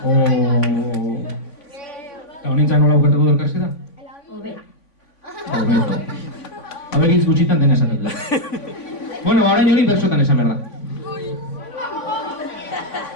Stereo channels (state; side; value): late; right; 3.5 ms